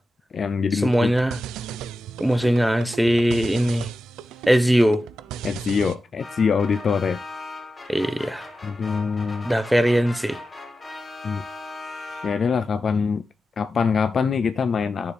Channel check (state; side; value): normal; both; correlation 0.91